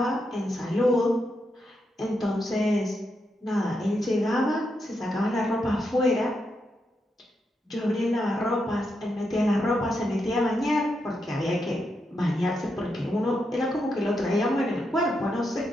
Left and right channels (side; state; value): both; normal; correlation 0.83